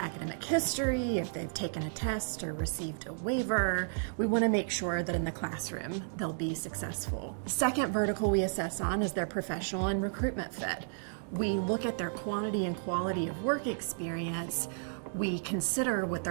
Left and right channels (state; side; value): silent; left; digital silence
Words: history, if they've taken a test or received a waiver. We want to make sure that in the classroom they'll be successful. Second vertical we assess on is their professional and recruitment fit. We look at their quantity and quality of work experience. We consider what